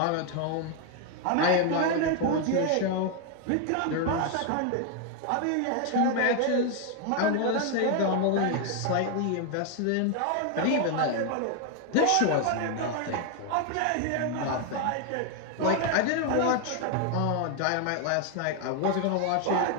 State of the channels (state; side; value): different; both; correlation 0.01